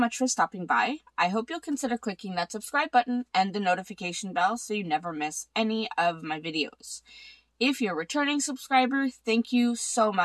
for stopping by. I hope you'll consider clicking that subscribe button and the notification bell so you never miss any of my videos. If you're a returning subscriber, thank you so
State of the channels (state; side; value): identical; both; correlation 1.00